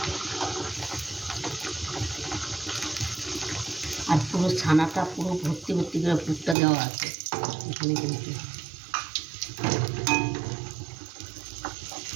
আর পুরো ছানাটা পুরো ভর্তি ভর্তি করে পুরটা দেওয়া আছে এখানে কিন্তু।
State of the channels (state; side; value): drops out; left; at 6.6 s